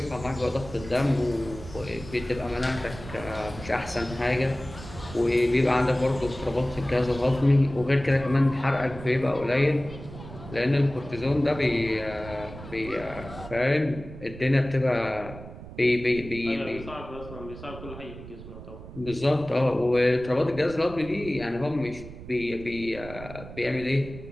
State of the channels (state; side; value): noise; right; rumble, 14 dB below the sound